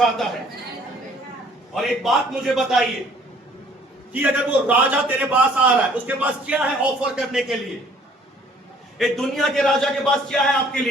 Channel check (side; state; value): both; normal; correlation 0.58